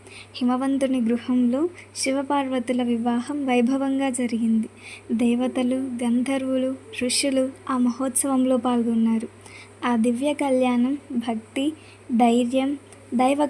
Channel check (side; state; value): both; identical; correlation 1.00